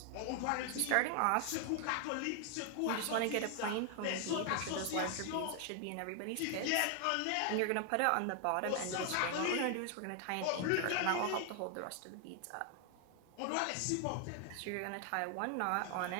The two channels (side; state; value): both; different; correlation 0.00